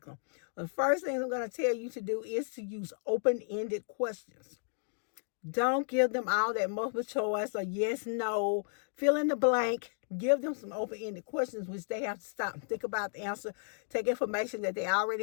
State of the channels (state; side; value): silent; right; digital silence